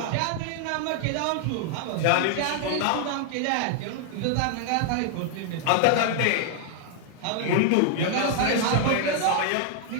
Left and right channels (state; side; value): different; both; correlation 0.00